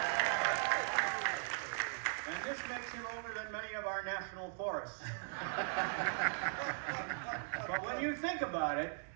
And this makes him older than many of our national forests. But when you think about it,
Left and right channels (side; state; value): left; silent; digital silence